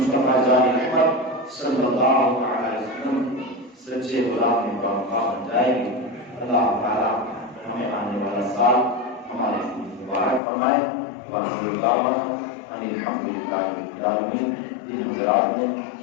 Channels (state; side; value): drops out; right; at 10.4 s